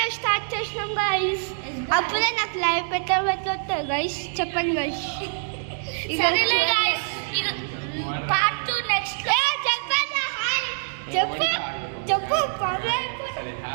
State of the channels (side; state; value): left; silent; digital silence